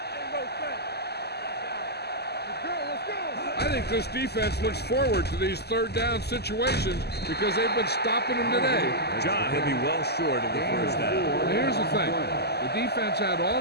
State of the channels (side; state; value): right; late; 0.47 ms